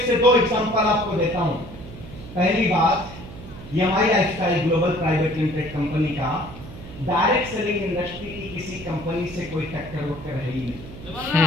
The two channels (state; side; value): noise; right; hum, 14 dB below the sound